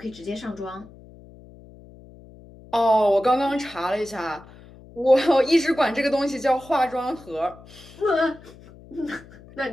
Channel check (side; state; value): left; noise; hum, 21 dB below the sound